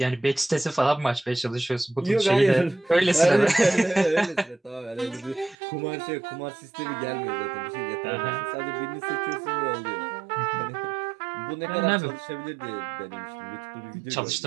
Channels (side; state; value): left; drops out; at 5.6 s